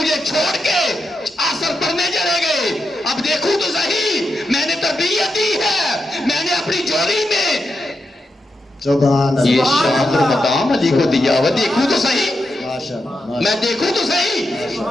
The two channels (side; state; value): both; normal; correlation 0.86